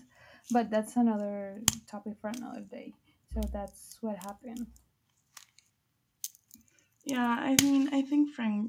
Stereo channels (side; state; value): both; identical; correlation 1.00